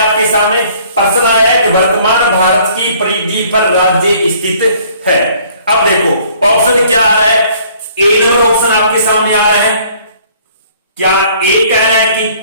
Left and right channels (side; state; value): both; inverted; correlation -0.58